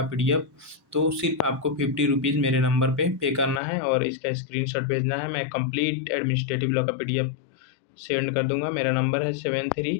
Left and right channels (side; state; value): right; drops out; at 3.6 s